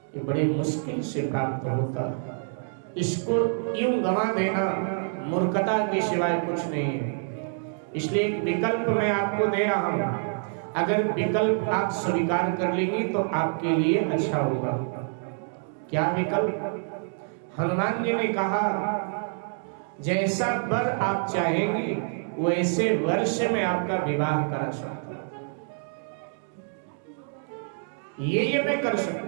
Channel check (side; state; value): left; silent; 60 dB below the other